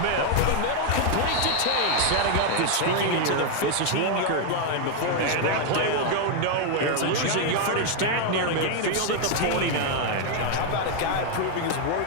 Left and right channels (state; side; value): different; both; correlation 0.00